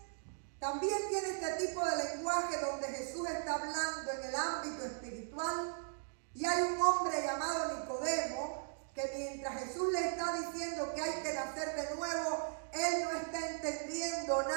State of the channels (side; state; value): left; silent; digital silence